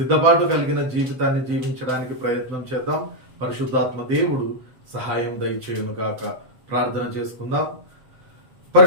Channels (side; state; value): left; late; 7.8 ms